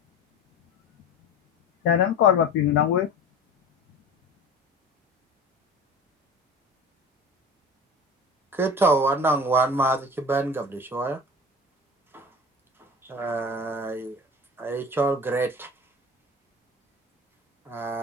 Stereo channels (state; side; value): normal; both; correlation 0.35